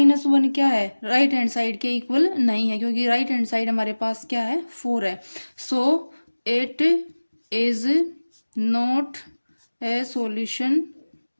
क्या है, राइट हैंड साइड के इक्वल नहीं है, क्योंकि राइट हैंड साइड हमारे पास क्या है 4 है, so it is not a solution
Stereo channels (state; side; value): inverted; both; correlation -1.00